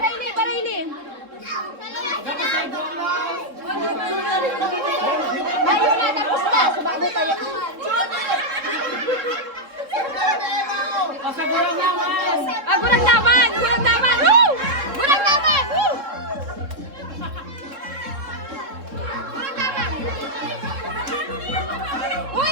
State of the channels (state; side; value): late; left; 3.7 ms